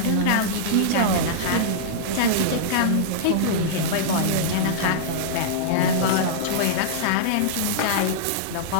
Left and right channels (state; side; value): different; both; correlation -0.03